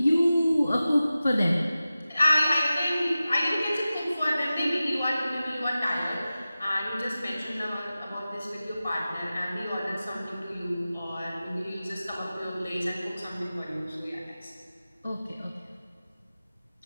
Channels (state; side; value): inverted; both; correlation -0.95